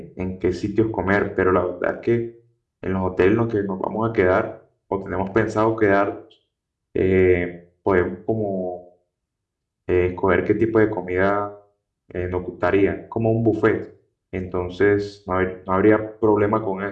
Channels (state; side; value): identical; both; correlation 1.00